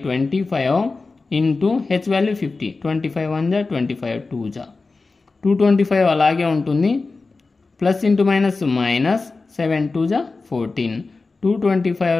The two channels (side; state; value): right; quieter; 3.9 dB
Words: into H value 50, 25 1 జా 25 2 జా 225 అలాగే ఉంటుంది. Plus into minus minus 7 2 జా 14,